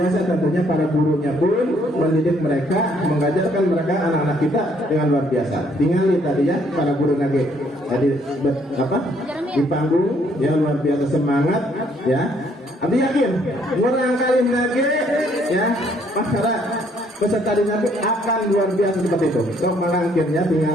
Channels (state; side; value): normal; both; correlation 0.66